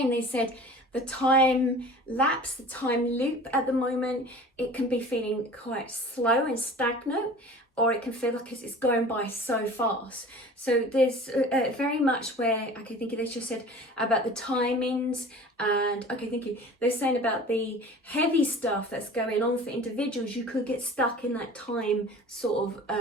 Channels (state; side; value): normal; both; correlation 0.42